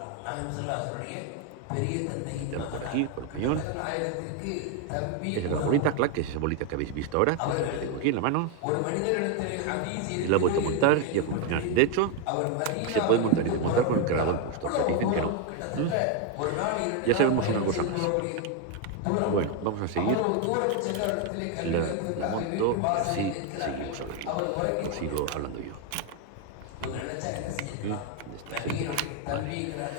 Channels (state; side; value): different; both; correlation 0.01